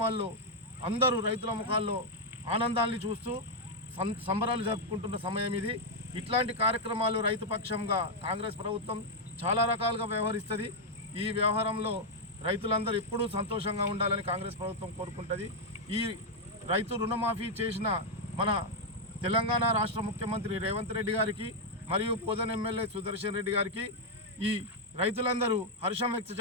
అందరూ రైతుల ముఖాల్లో ఆనందాన్ని చూస్తూ సంబరాలు జరుపుకుంటున్న సమయం ఇది. ఇట్లాంటి కార్యక్రమాలు రైతు పక్షంగా కాంగ్రెస్ ప్రభుత్వం చాలా రకాలుగా వ్యవహరిస్తుంది. ఈ వ్యవహారంలో రైతులందరూ ఎప్పుడూ సంతోషంగా ఉండాలని కాంగ్రెస్ ప్రభుత్వం కోరుకుంటుంది. ఈ రైతు రుణమాఫీ చేసిన మన తెలంగాణ రాష్ట్ర ముఖ్యమంత్రి రేవంత్ రెడ్డి గారికి మరియు పోదన్ ఎమ్మెల్యే సుదర్శన్ రెడ్డి గారికి ఈ రైతులందరూ హర్షం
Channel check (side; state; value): both; normal; correlation 0.00